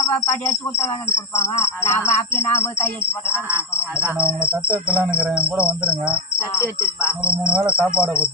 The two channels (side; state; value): both; normal; correlation 0.11